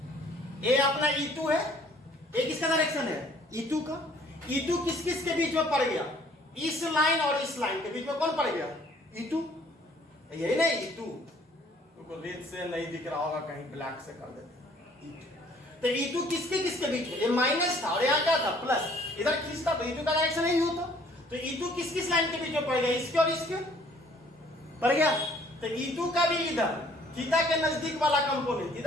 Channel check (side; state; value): both; normal; correlation 0.58